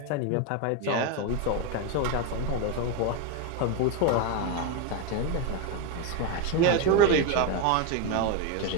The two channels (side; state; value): both; different; correlation 0.02